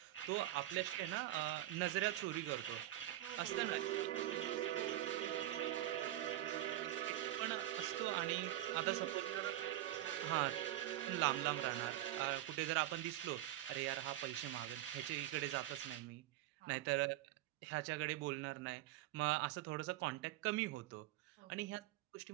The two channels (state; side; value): quieter; left; 14.5 dB